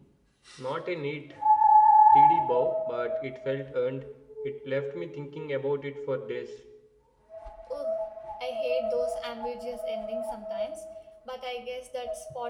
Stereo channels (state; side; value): identical; both; correlation 1.00